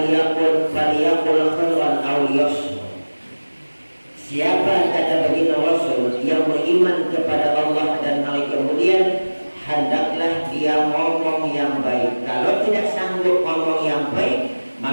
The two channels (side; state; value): both; inverted; correlation -1.00